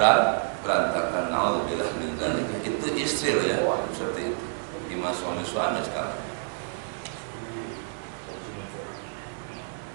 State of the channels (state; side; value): silent; left; digital silence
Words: Na'udzubillah min dzalik. Itu istri loh ya, seperti itu. Gimana suami-suami sekarang?